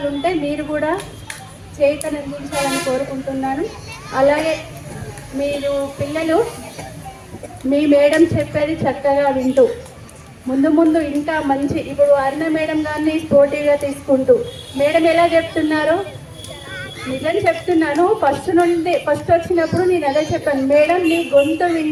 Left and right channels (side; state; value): both; identical; correlation 1.00